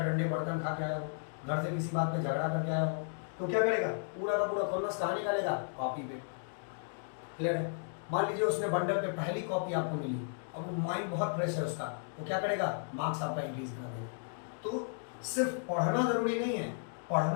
बर्तन खा के आया हो, घर से किसी बात पे झगड़ा करके आया हो, तो क्या करेगा, पूरा का पूरा खुन्नस कहाँ निकालेगा, कॉपी पे। क्लियर है। मान लीजिए उसने बंडल पे पहली कॉपी आपको मिली, अब माइंड बहुत फ्रेश है उसका, तो क्या करेगा, मार्क्स आपका इंक्रीज कर देगा। तो सिर्फ पढ़ना जरूरी नहीं है,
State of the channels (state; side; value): silent; right; digital silence